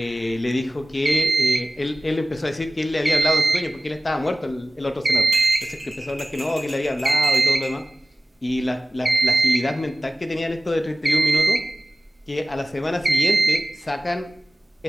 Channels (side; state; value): both; normal; correlation 0.95